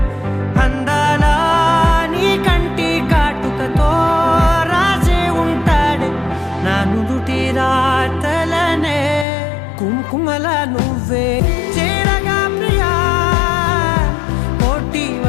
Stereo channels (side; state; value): right; drops out; at 9.2 s